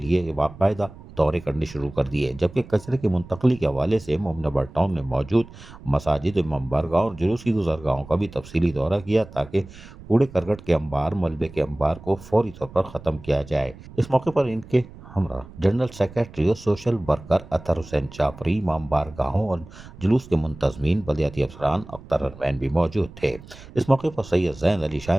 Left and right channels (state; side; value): noise; right; rumble, 18 dB below the sound